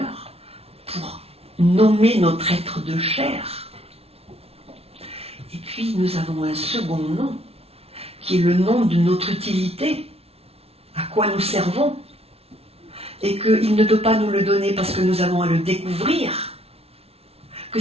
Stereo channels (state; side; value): late; left; 0.29 ms